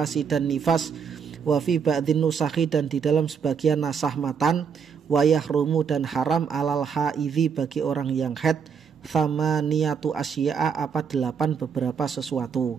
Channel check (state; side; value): quieter; left; 6.6 dB